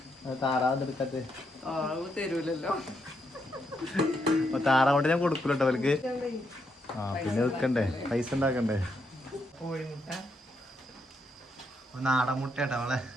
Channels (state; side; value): normal; both; correlation 0.79